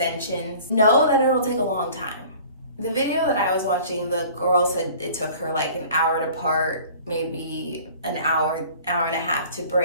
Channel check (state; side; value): inverted; both; correlation -0.47